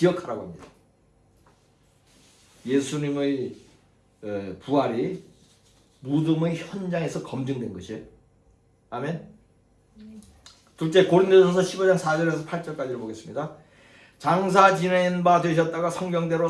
합니다. 예수님의 부활이 무덤의 현장에서 검증된 것이에요. 아멘. 둘째, 고린도전서 15장 4절에서 8절까지를 보겠습니다. 장사 지낸 바 되셨다가 성경대로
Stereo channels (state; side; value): identical; both; correlation 1.00